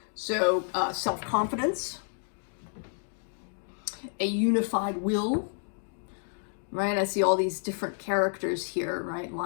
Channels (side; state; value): right; silent; digital silence